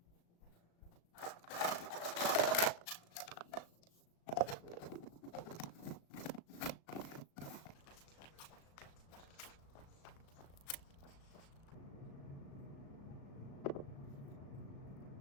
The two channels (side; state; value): right; late; 36 ms